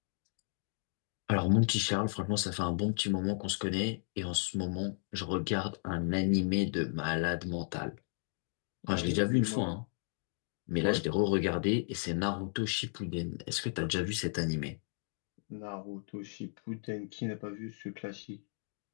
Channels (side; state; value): right; silent; digital silence